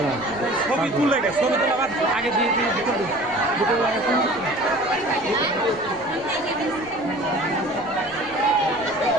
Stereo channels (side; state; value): left; noise; rumble, 22 dB below the sound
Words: ছবি তুলে গেছে ছবি তোলা আগে দিয়ে দিয়ে দুটো